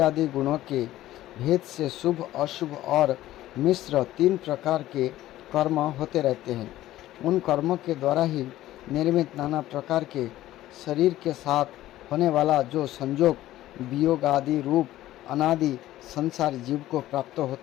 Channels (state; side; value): quieter; right; 14.8 dB